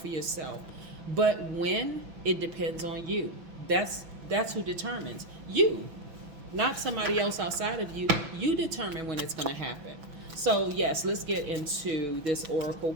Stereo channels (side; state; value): left; late; 6.0 ms